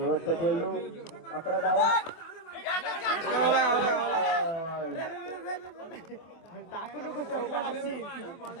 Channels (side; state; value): right; late; 25 ms